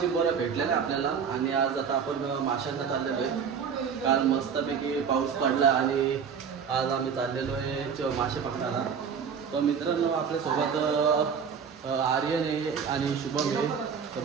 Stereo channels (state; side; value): quieter; left; 6.8 dB